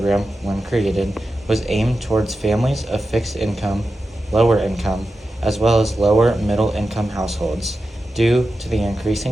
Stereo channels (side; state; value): both; normal; correlation 0.91